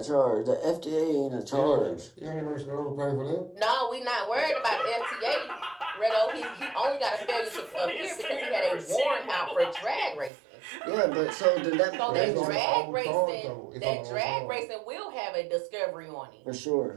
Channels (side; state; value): left; drops out; at 10.3 s